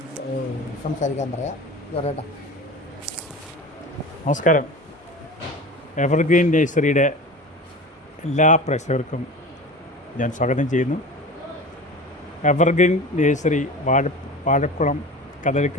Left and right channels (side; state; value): both; normal; correlation 0.33